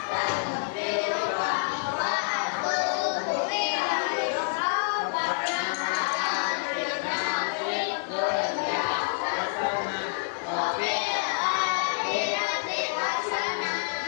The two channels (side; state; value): right; silent; digital silence